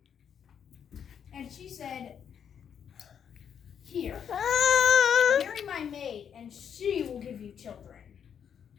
And she said, "Here, marry my maid, and she will give you children,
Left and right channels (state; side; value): quieter; right; 8.1 dB